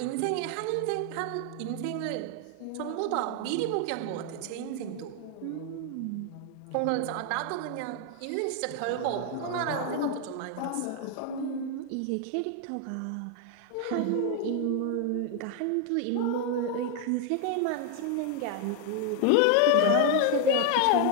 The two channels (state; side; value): different; both; correlation 0.01